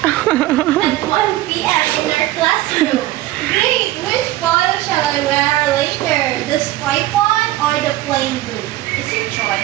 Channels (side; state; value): left; quieter; 16.0 dB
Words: 1 p.m. in our classroom. Great! Which photo shall I wear later? The striped one or the plain blue? It's your